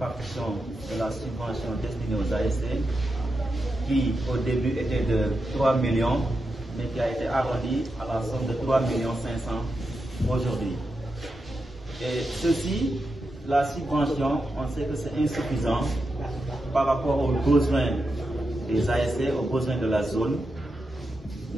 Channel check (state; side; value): normal; both; correlation 0.88